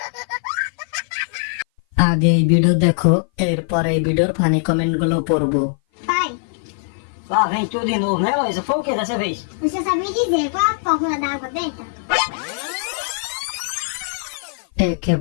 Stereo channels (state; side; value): silent; right; 57 dB below the other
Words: আগে এই ভিডিও দেখো, এরপর এই ভিডিওর ফানি কমেন্ট গুলো pôrbo. Pai, Lá vem tudo de novo, né, Luísa? Foi o que dessa vez? você sabia dizer qual a fórmula da água benta?